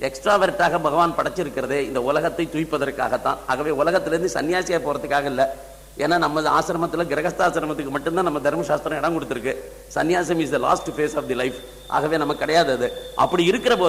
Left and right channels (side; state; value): both; identical; correlation 1.00